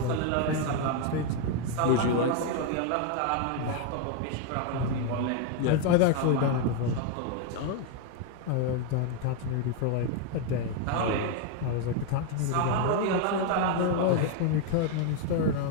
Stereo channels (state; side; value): different; both; correlation 0.01